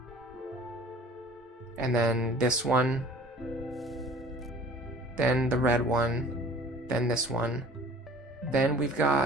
And then this one. Then the red one. Then this one. Then we've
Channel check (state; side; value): normal; both; correlation 0.48